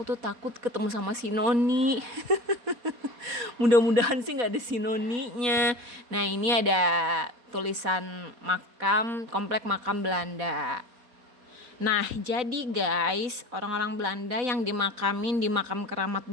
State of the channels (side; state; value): left; late; 4.1 ms